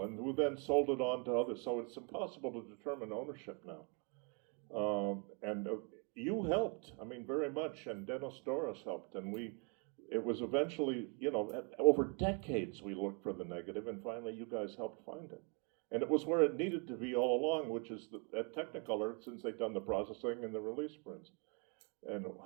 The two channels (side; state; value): left; quieter; 36.2 dB